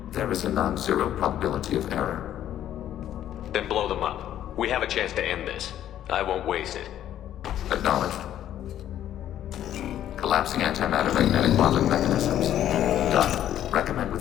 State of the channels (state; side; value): quieter; right; 11.5 dB